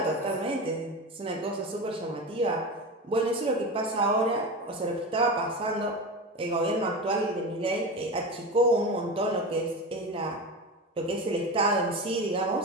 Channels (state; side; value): normal; both; correlation 0.24